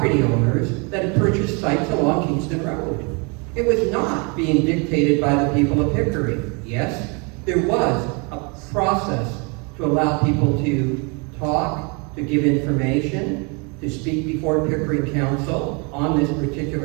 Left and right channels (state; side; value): quieter; left; 32.5 dB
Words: owners that had purchased sites along Kingston Road. It was not being dictated by the people of Pickering. Yes, there was a process to allow people to talk to give information, to speak before Pickering Council on this